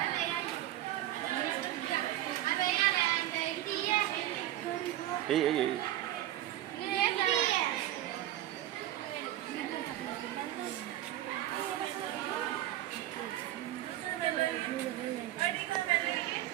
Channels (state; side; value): quieter; left; 14.0 dB